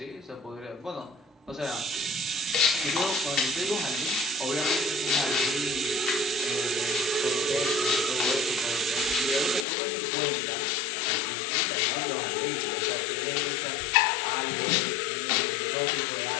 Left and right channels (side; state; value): right; drops out; at 9.7 s